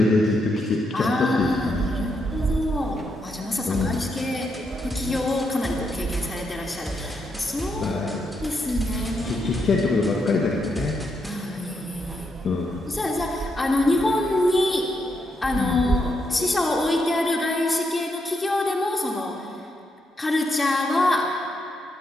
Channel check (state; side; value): normal; both; correlation 0.80